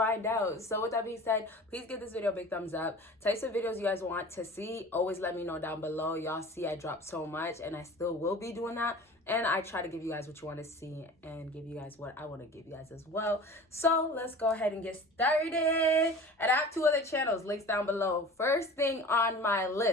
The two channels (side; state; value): both; normal; correlation 0.40